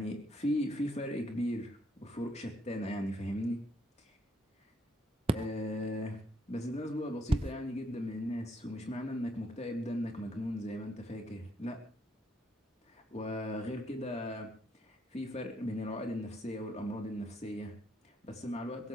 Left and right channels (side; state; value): both; normal; correlation 0.73